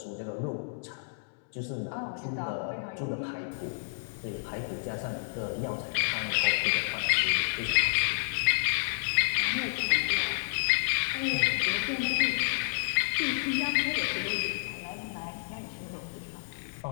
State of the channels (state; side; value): silent; right; digital silence